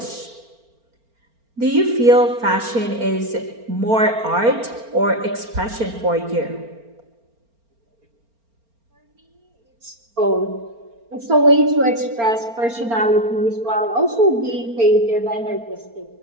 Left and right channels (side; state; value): left; late; 4.4 ms